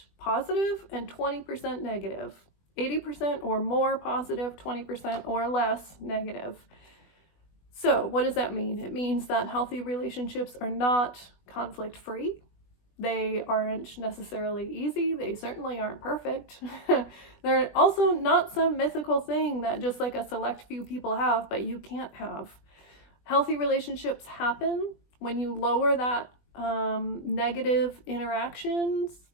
positive and 20% negative. 80% or more positive, 20% or less negative. So what does that mean? It means that healthy relationships are not conflict-free. They aren't necessarily easy. They certainly aren't perfect. They're also not some mythical thing that just like a select few people have, but you can't have. Healthy relationships happen when you lower that negative interactions,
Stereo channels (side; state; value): right; late; 20 ms